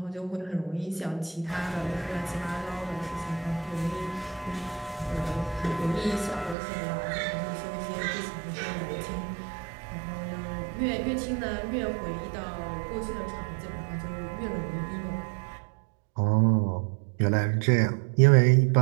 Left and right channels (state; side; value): drops out; left; at 6.6 s